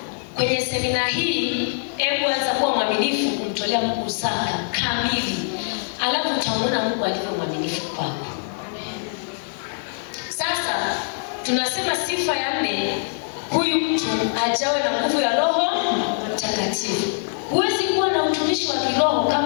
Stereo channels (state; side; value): silent; right; 63 dB below the other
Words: kwenye semina hii, hebu anza kuwa mwaminifu kumtolea Mungu zaka kamili, alafu utaona Mungu alivyo mwaminifu kwako. Sasa tunasema sifa ya 4, huyu mtu ajawe na nguvu ya Roho Mtakatifu. Huwezi kuwa na utumishi wa kiroho